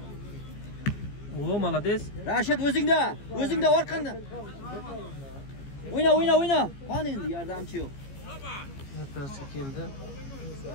O, молодец. Rashid o'zingda orqanda. O'yna. Qani endi yordamchi yo'q. Vartasi keldi.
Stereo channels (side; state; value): right; late; 15 ms